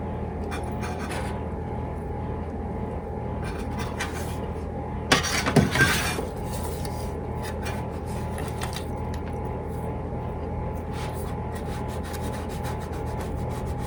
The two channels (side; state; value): both; identical; correlation 1.00